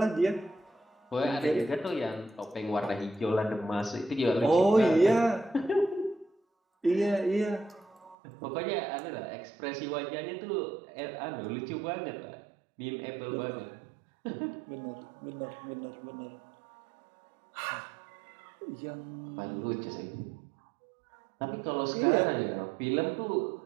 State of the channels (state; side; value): drops out; left; at 8.2 s